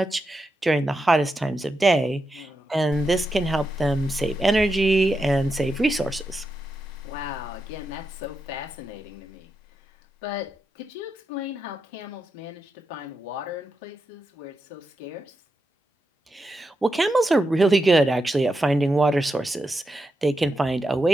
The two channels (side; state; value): both; normal; correlation 0.86